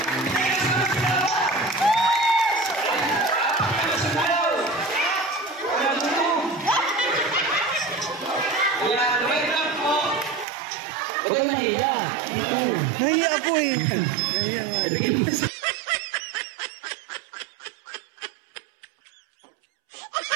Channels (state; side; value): drops out; left; at 10.5 s